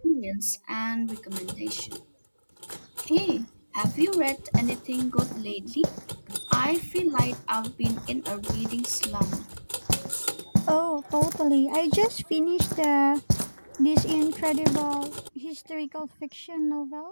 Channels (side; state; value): both; inverted; correlation -1.00